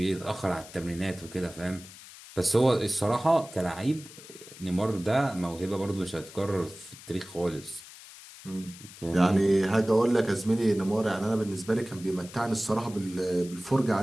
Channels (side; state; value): left; noise; hiss, 17 dB below the sound